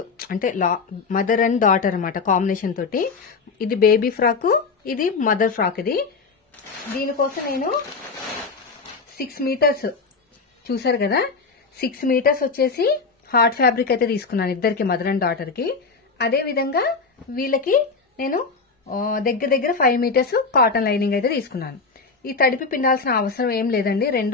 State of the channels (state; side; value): quieter; right; 4.6 dB